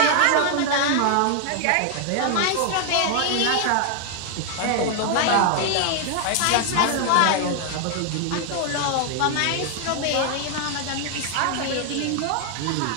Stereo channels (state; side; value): different; both; correlation 0.00